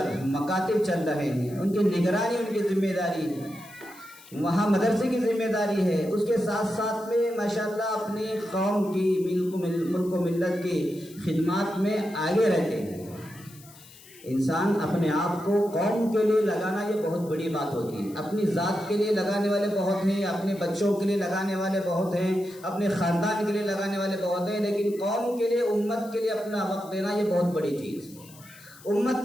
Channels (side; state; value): left; noise; hiss, 22 dB below the sound